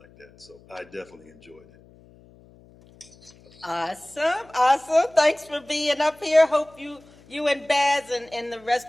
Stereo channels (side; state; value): left; noise; hum, 26 dB below the sound